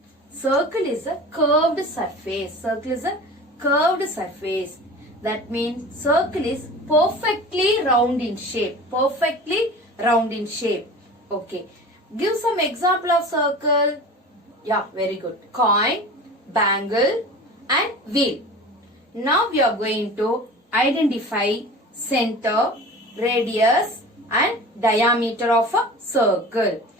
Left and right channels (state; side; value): normal; both; correlation 0.37